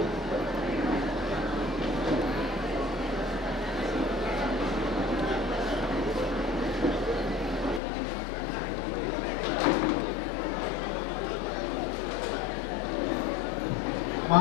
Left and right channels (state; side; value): drops out; right; at 7.8 s